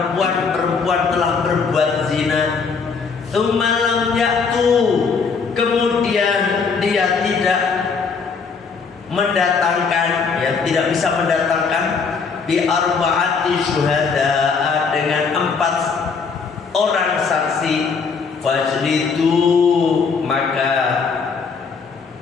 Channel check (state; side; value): quieter; right; 5.3 dB